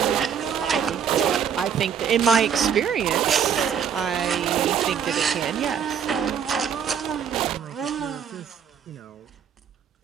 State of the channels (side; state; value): left; quieter; 7.8 dB